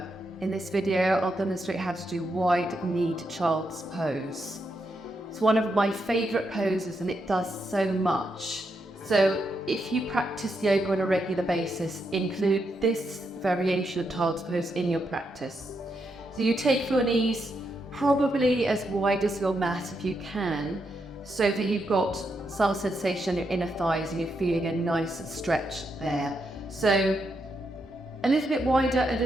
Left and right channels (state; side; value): normal; both; correlation 0.82